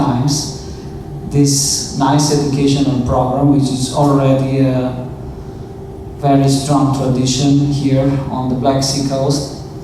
this nice educational program, which is already a very strong tradition here on the Black Sea coast,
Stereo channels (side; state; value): both; identical; correlation 1.00